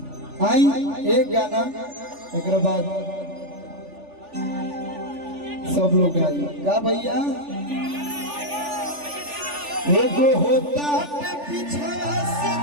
आई एक गाना एक बाद सब लोग आई का भैया। एगो होता पिछड़ा से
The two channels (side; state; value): left; late; 3.4 ms